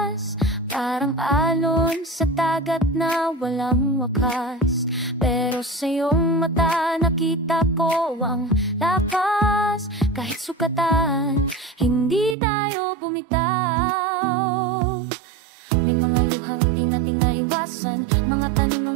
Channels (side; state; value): left; drops out; at 12.4 s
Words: parang alon sa dagat na walang wakas. Pero sa iyong mata nakita ko ang lakas. Kahit sukatan, hindi tayo bumitaw. May mga luhang di natin naiwasan, mga